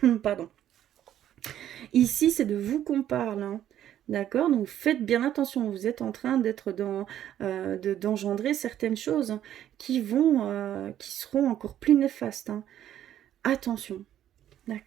Pardon. Ici, c'est de vous qu'on parle. D'accord? Donc, faites bien attention. Vous êtes en train d'être d'engendrer certaines choses qui seront encore plus néfastes. Attention.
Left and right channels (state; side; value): quieter; left; 11.3 dB